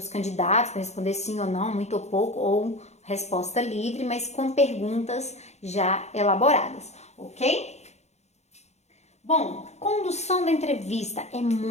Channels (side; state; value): right; late; 0.32 ms